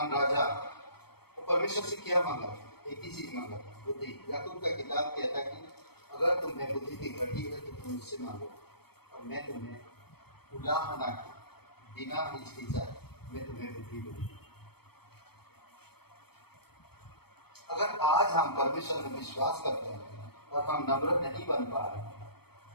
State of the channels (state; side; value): late; right; 0.97 ms